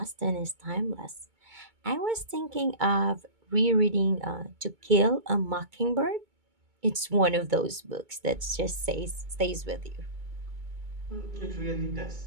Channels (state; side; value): late; left; 2.2 ms